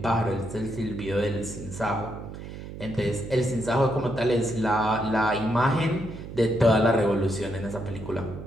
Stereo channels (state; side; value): noise; right; hum, 11 dB below the sound